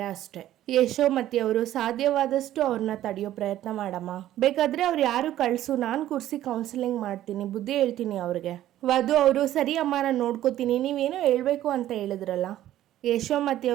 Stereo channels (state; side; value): quieter; left; 13.1 dB